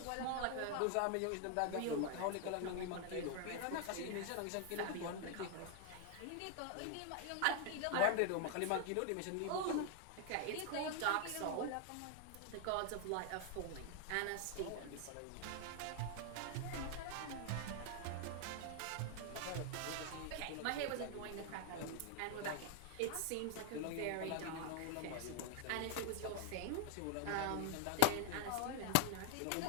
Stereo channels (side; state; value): both; different; correlation 0.00